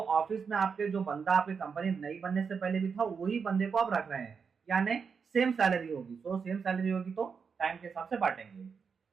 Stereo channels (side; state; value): left; quieter; 5.9 dB